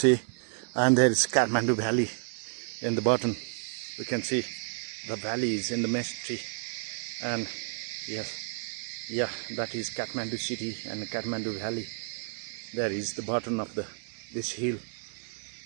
and there is Kathmandu Valley in the bottom. We can see the valley is in the mystery, and yes, yeah, that is Kathmandu city and Kathmandu Valley. There is the bottom of this hill,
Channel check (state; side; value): silent; left; 57 dB below the other